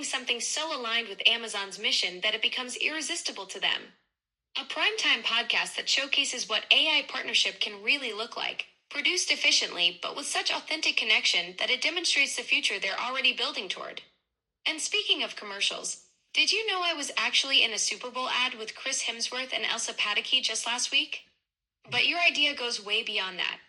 something so aligned with Amazon's mission that it becomes irresistible to them. A primetime podcast that showcases what AI partnership can really look like, produced efficiently but with such authentic connection that it demonstrates the future they're already building toward. And speaking of commercials, did you know I was actually in a Super Bowl ad with Chris Hemsworth and Elsa Pataky just last week? But your idea goes way beyond that.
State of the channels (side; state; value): both; identical; correlation 1.00